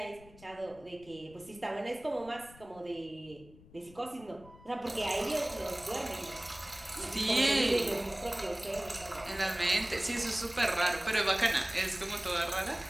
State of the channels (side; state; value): left; noise; rumble, 22 dB below the sound